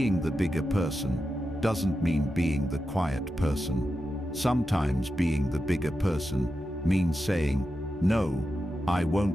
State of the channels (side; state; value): both; normal; correlation 0.89